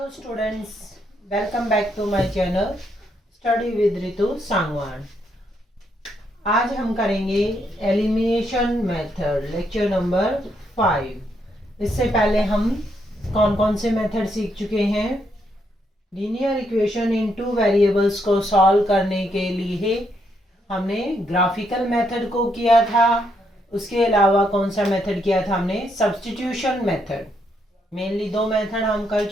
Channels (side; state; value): both; normal; correlation 0.76